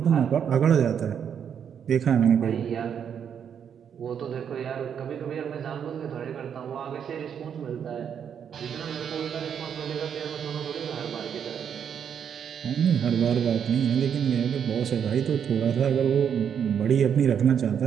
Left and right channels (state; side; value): quieter; left; 8.0 dB